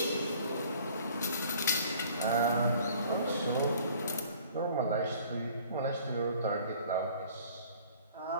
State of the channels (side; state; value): both; inverted; correlation -0.53